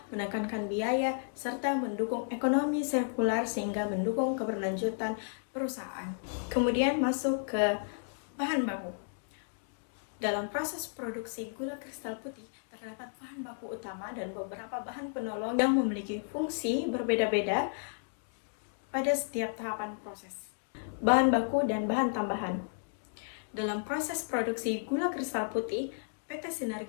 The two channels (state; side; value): silent; right; digital silence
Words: menekankan biaya, serta mendukung ekonomi sirkular sehingga mendukung keberlanjutan perusahaan. Kemudian masuk ke bahan baku. Dalam proses produksi gula kristal putih, terdapat bahan baku utama dan beberapa bahan penolong yang memiliki fungsi berbeda-beda pada setiap tahapan proses. Bahan baku dan bahan tambahan. Dalam proses produksi gula kristal putih, PT